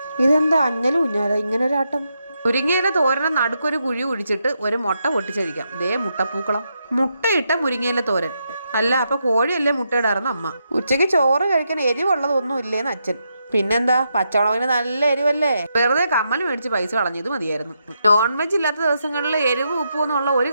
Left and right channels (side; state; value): both; inverted; correlation -0.82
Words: ഇതെന്താ അഞ്ഞലും ഉഞ്ഞാല ഇങ്ങനൊരാട്ടം? മുരിങ്ങയില തോരനെ നടുക്കൊരു കുഴി കുഴിച്ചിട്ട് ഒരു മുട്ട പൊട്ടിച്ചഴിക്കാം. ദേ മുട്ടപ്പൂക്കളം. മുട്ടയിട്ട മുരിങ്ങയില തോരൻ. അല്ല, അപ്പൊ കോഴിയല്ലേ മുട്ടയിടാറുന്ന അമ്മ. ഉച്ചയ്ക്ക് ചോറ് കഴിക്കാൻ എരിവുള്ളതൊന്നും ഇല്ലേന്ന് അച്ഛൻ. പിന്നെന്താ, പച്ചമുളകിന് നല്ല എരിവല്ലേ. വെറുതെ കമ്മൽ മേടിച്ച് പൈസ കളഞ്ഞത് മതിയായിരുന്നു. നോൺ വെജ് ഇല്ലാത്ത ദിവസങ്ങളിൽ എരിവ് ഉപ്പും എന്നുള്ള ഒരു